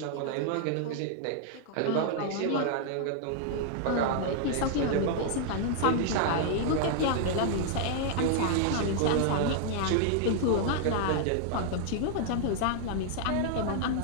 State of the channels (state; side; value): different; both; correlation -0.01